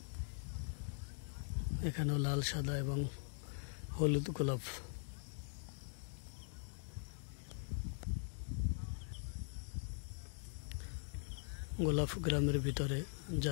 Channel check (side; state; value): right; silent; digital silence